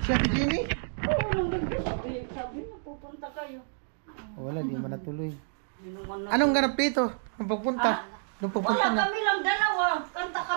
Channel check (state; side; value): silent; left; digital silence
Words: Si Ate Jimmy? Oo, nung gabi, sabi mo, pupunta kayo. Wala, di man natuloy. Minuman na. Anong ganap dito? Ang pagpunta? Nung pagpunta Wala, na. kami lang dalawa.